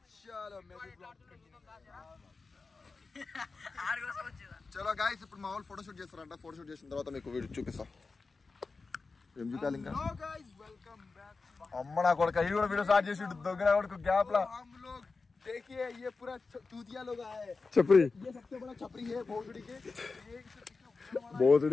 चलो मैं भी ब्लॉग चलो गाइस ఇప్పుడు మా వాళ్ళు ఫోటో షూట్ చేస్తారంట ఫోటో షూట్ చేసిన తర్వాత మీకు వీడియో చూపిస్తా ఏం చూపాలి ఇంకా హలో गाइस వెల్కమ్ బ్యాక్ అమ్మ నా కొడుకు ఈ కూడా వీడియో స్టార్ట్ చేసి దొంగన కొడుకు గ్యాప్ లా हम लोग देखिए ये पूरा चूतिया लोग आए हैं छपरी ये सबसे बड़ा छपरी है भोसड़ी के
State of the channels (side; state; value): right; quieter; 4.2 dB